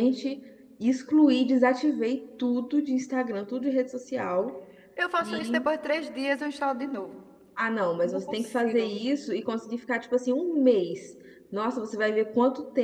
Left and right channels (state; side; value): identical; both; correlation 1.00